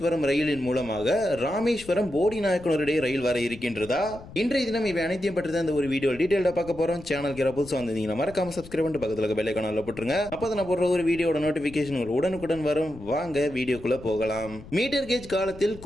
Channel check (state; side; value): noise; left; rumble, 17 dB below the sound